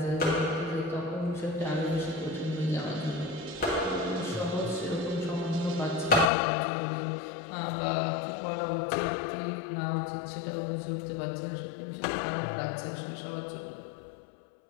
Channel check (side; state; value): right; drops out; at 6.3 s